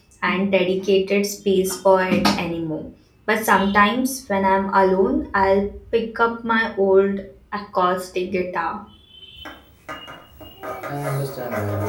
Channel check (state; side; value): identical; both; correlation 1.00